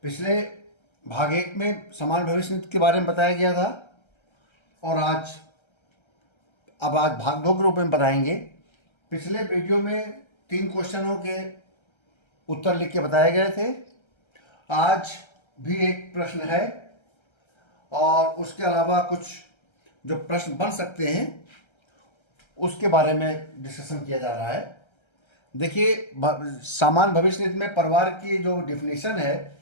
पिछले भाग 1 में समान भविष्य निधि के बारे में बताया गया था और आज भाग 2 के रूप में बताएंगे। पिछले वीडियो में 3 क्वेश्चनों के उत्तर लिख के बताए गए थे। आज भी एक प्रश्न है और उसके अलावा कुछ जो प्रश्न बन सकते हैं उसके बारे में डिस्कशन किया जा रहा है। देखिए, समान भविष्य निधि में परिवार की जो डिफिनीशन है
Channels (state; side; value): late; right; 1.3 ms